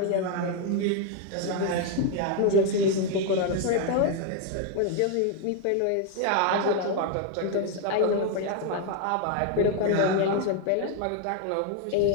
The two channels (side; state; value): both; different; correlation 0.01